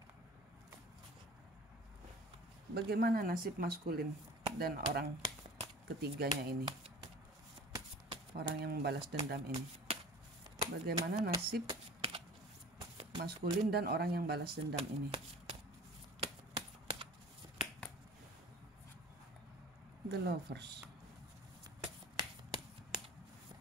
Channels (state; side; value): normal; both; correlation 0.42